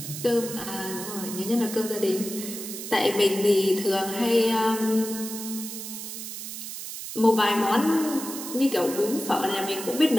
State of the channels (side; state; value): right; noise; hiss, 8 dB below the sound